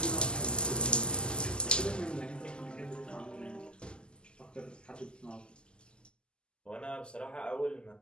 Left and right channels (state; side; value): late; right; 0.048 ms